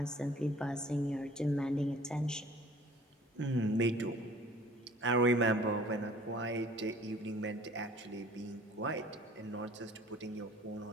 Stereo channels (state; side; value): normal; both; correlation 0.50